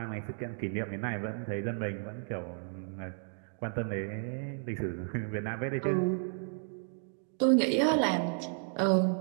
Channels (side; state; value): left; silent; 56 dB below the other